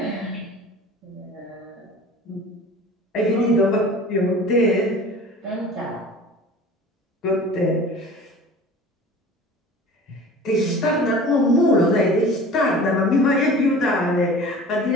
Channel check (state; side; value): normal; both; correlation 0.41